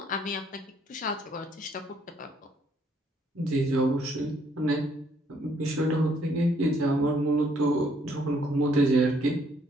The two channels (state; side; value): normal; both; correlation 0.67